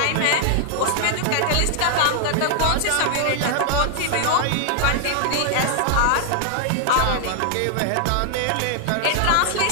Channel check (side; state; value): both; different; correlation 0.00